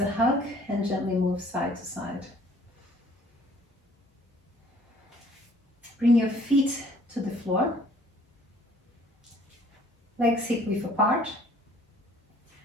hug and gently move side to side. Bring your feet to the floor. Legs hip width apart.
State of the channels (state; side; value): normal; both; correlation 0.57